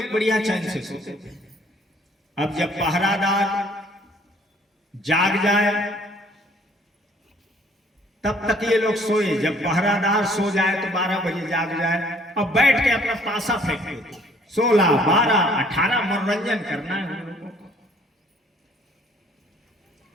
बढ़िया चैन से सोते थे। अब जब पहरादार जाग जाए तब तक ये लोग सोए। जब पहरादार सो जाए तो 12 बजे जाग जाए, अब बैठ के अपना पासा फेंकते। 16, 12, 18 मनोरंजन करना है हम लोगों को।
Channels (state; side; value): normal; both; correlation 0.59